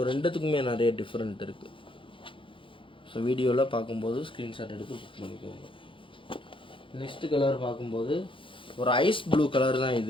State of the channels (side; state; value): right; late; 0.25 ms